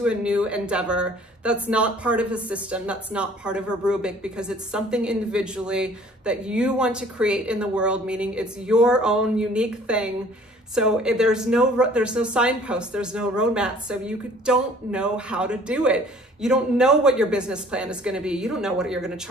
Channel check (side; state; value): both; normal; correlation 0.53